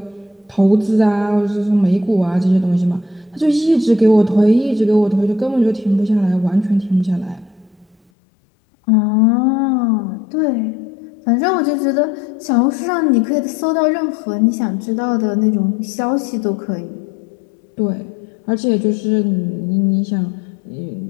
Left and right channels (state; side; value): drops out; right; at 8.0 s